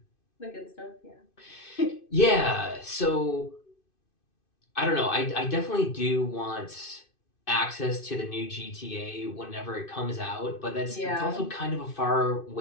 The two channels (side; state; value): right; late; 2.5 ms